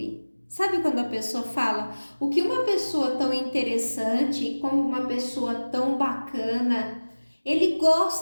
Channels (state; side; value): inverted; both; correlation -1.00